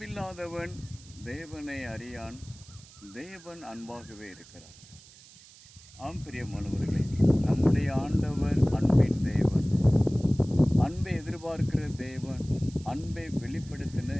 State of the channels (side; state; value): right; noise; hiss, 22 dB below the sound